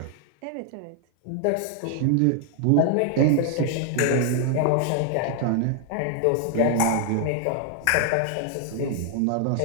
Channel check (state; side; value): different; both; correlation 0.00